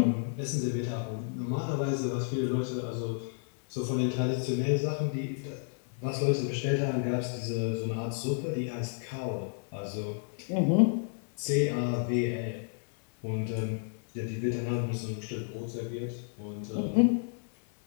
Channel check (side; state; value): right; silent; 57 dB below the other